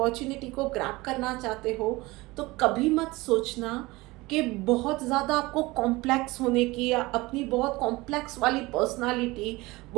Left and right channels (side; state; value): left; quieter; 21.5 dB